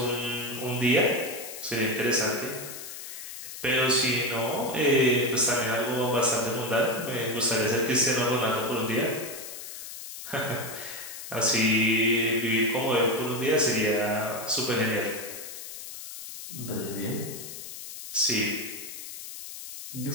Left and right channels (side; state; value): left; noise; hiss, 11 dB below the sound